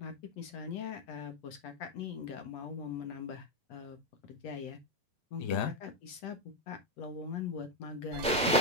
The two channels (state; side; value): normal; both; correlation 0.05